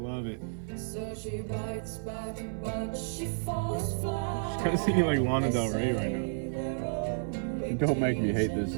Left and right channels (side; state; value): left; silent; 57 dB below the other